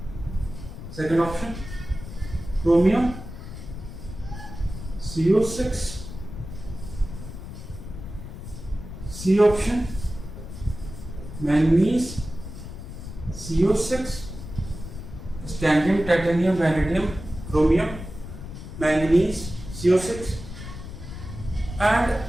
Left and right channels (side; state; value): left; noise; rumble, 11 dB below the sound